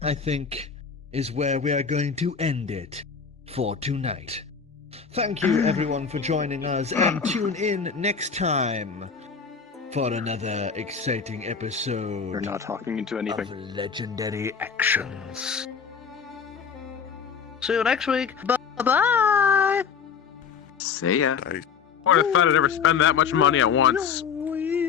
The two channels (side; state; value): right; quieter; 6.3 dB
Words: I think, is where we are going to end it for tonight. Thank you, everyone, for joining us, and tune in next time for another exciting episode You're not talking into anything. of Legendary Actions. See you next week. Bye-bye. See ya. I would have thought I'd ever spend that much money at once.